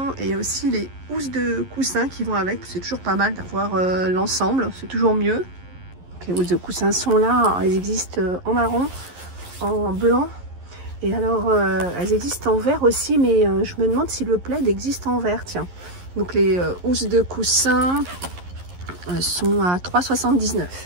et il y a aussi les housses de coussin qui vont avec. C'est toujours pas mal d'avoir l'ensemble, c'est toujours mieux. Donc, les housses de coussin sont là, elles existent en marron, en blanc. Et alors, elles existent en vert aussi, mais je me demande si le plaid existe en vert, tiens. Donc les housses de coussin sont à 3,79 €.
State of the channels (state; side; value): late; left; 11 ms